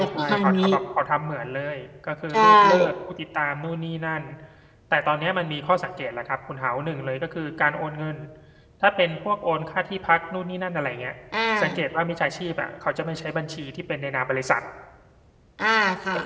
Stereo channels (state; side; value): identical; both; correlation 1.00